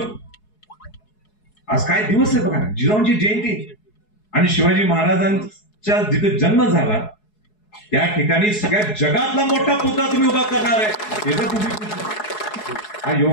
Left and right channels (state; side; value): late; right; 4.7 ms